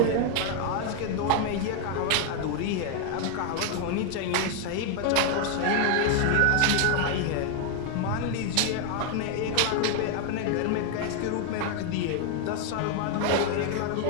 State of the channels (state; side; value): different; both; correlation 0.00